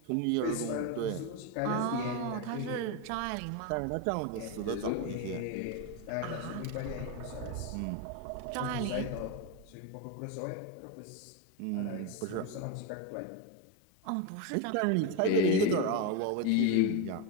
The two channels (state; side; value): different; both; correlation 0.03